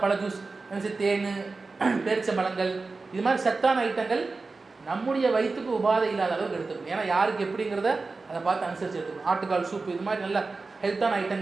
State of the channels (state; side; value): quieter; left; 3.9 dB